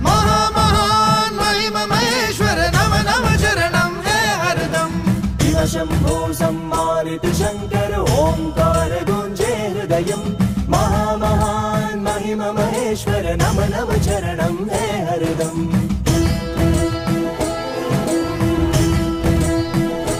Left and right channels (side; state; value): both; identical; correlation 1.00